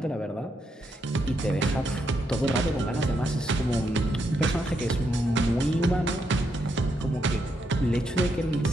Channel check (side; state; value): both; normal; correlation 0.79